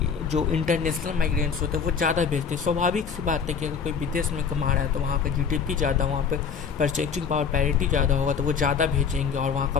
इंटरनेशनल माइग्रेंट्स होते हैं वो ज़्यादा भेजते हैं। स्वाभाविक सी बात है कि अगर कोई विदेश में कमा रहा है तो वहाँ का जीडीपी ज़्यादा, वहाँ पे परचेजिंग पावर पैरिटी ज़्यादा होगा तो वो ज़्यादा भेजेंगे, और वहाँ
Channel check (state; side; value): quieter; right; 6.4 dB